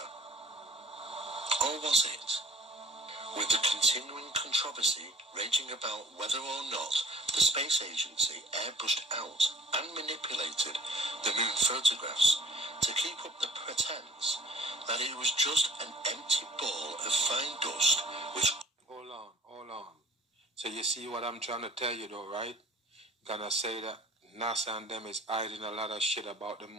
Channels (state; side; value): normal; both; correlation 0.51